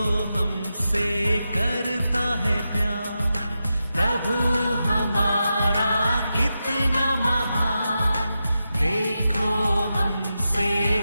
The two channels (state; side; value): inverted; both; correlation -0.89